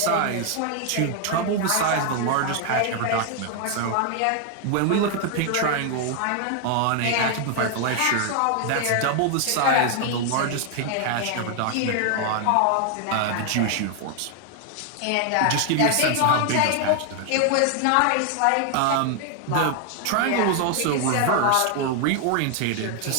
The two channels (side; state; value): both; different; correlation 0.00